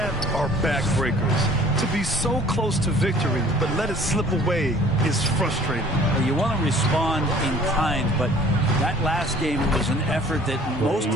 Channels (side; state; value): both; normal; correlation 0.51